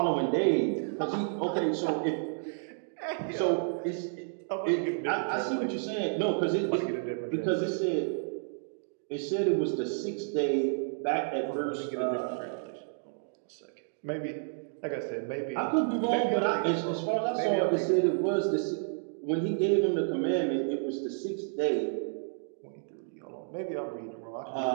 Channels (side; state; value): left; silent; digital silence